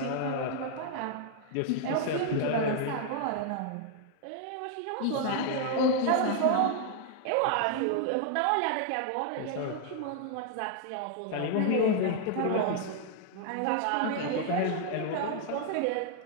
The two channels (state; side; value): different; both; correlation 0.00